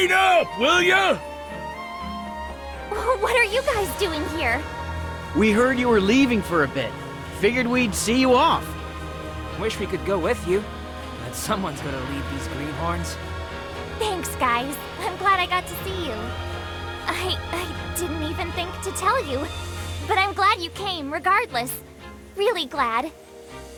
up, will ya? What are you guys doing here? We heard you were leaving for a bit. Figured we'd see you off. Wish we could go with you, but someone's gonna lead these greenhorns. Thanks, guys. I'm glad I got to see you. I didn't even think to tell you, but I'm glad you came regardless. Really glad.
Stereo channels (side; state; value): both; identical; correlation 1.00